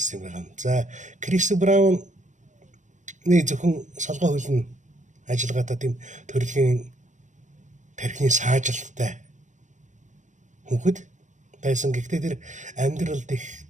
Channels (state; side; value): late; left; 0.35 ms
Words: байгаа юм. За Крис Брауны зөвхөн солгой хөл нь ажиллагаатаа тийм төрөлхийн тархины саажилттай хүүхэд байсан. Гэхдээ тэр амьдралд их